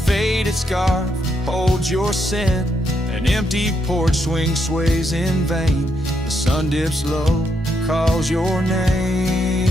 scarf holds your scent, an empty porch swing sways in vain, the sun dips low, calls your name.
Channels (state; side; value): normal; both; correlation 0.78